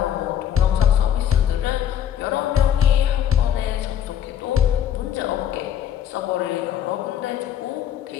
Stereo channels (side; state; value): right; quieter; 9.6 dB